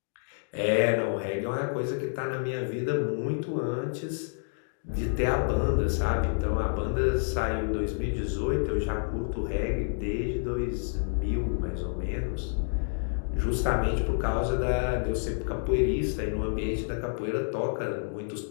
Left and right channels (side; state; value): right; silent; digital silence